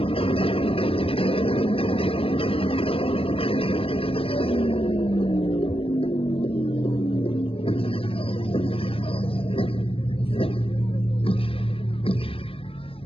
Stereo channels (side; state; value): right; late; 0.27 ms